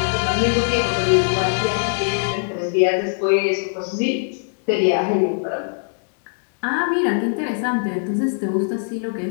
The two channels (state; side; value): silent; right; digital silence